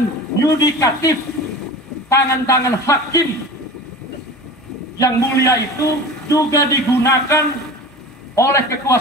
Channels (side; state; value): left; noise; hum, 29 dB below the sound